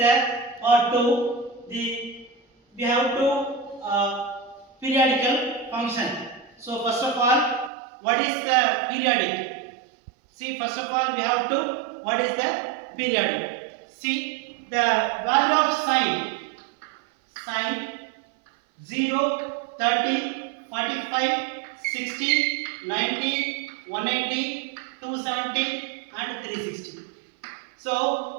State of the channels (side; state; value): left; drops out; at 7.7 s